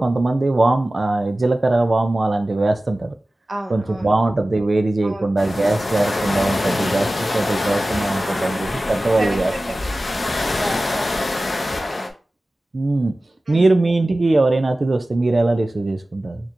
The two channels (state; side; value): normal; both; correlation 0.96